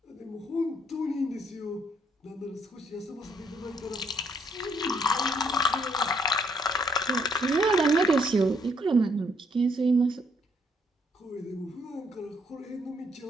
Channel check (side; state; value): both; normal; correlation 0.69